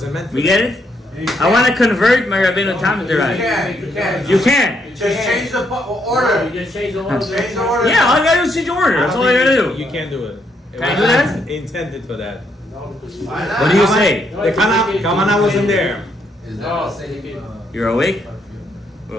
meant. We get it? I want to convert my Rabbeinu Tam into Rashis. You can. Just change the order. You just change the order. Change the order. Yeah, all I gotta do is change the order. That's all I gotta do. You can't do it. Can I do that? Intended for that. No, because Why not? What do you say? No, The Kavana wasn't there. Is No, that the same? You're awake?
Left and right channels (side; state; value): both; normal; correlation 0.75